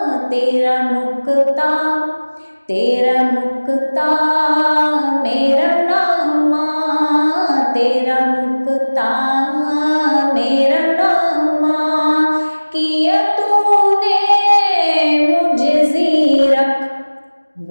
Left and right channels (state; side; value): inverted; both; correlation -1.00